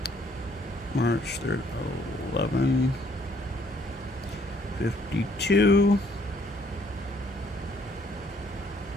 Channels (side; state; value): both; normal; correlation 0.64